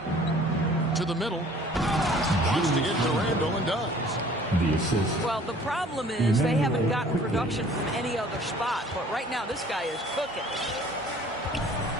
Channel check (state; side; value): normal; both; correlation 0.52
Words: To the middle. Wants to get to Randall and does. The assist. Well, the problem is they haven't gotten production from any other spot. But right now, this guy is cooking.